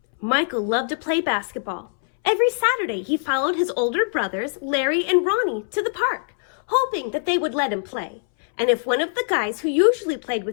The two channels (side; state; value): right; silent; 64 dB below the other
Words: Michael loved to play basketball. Every Saturday he followed his older brothers, Larry and Ronnie, to the park, hoping that they would let him play. And if one of the guys who usually played